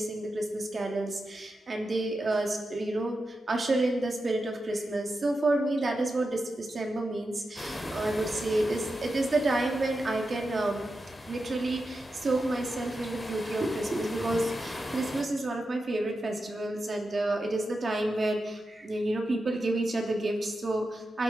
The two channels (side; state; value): both; normal; correlation 0.90